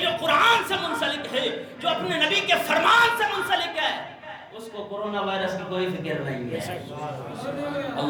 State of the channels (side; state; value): both; identical; correlation 1.00